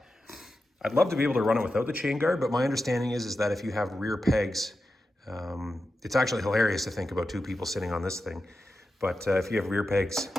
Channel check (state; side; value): normal; both; correlation 0.91